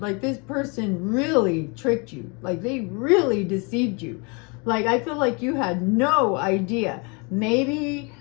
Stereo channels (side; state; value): right; quieter; 31.7 dB